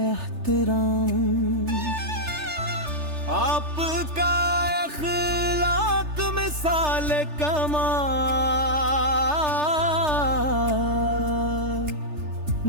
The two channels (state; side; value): late; left; 3.3 ms